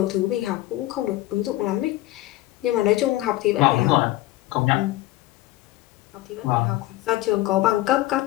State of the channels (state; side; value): quieter; right; 16.7 dB